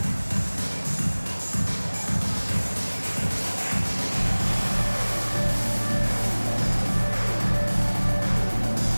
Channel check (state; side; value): inverted; both; correlation -1.00